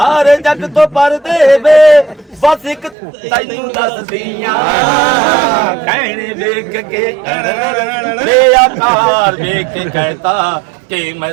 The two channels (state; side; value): drops out; left; at 3.0 s